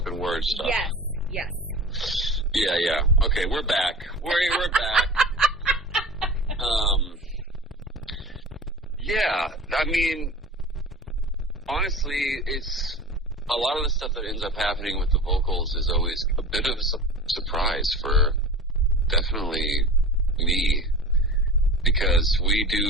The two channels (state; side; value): normal; both; correlation 0.35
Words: word stuff. Yes. Yeah. Okay, we're back. We're back. Yeah, I mean, honestly, it's a lot of the stuff that ends up happening with the vocals is always a bit of a surprise for definitely me, because we